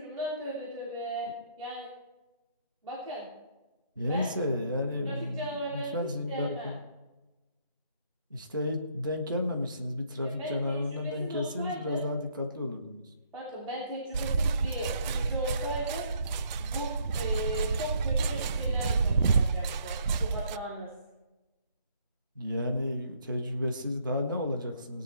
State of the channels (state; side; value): inverted; both; correlation -0.67